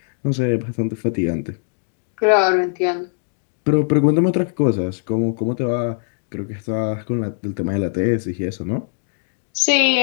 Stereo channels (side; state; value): right; silent; 57 dB below the other